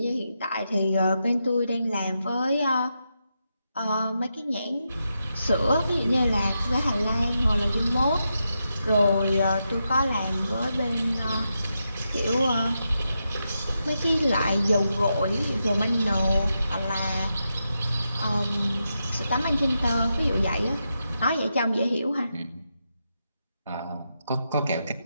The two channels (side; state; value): both; inverted; correlation -0.86